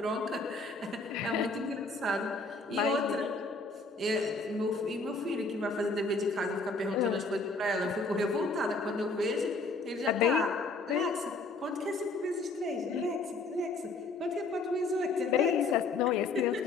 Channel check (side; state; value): right; quieter; 3.5 dB